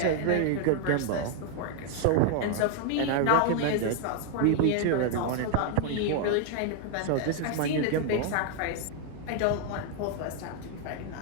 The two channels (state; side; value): different; both; correlation 0.00